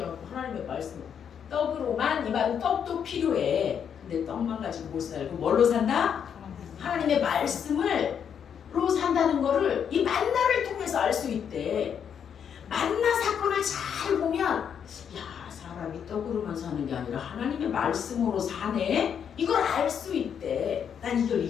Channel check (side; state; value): right; quieter; 7.9 dB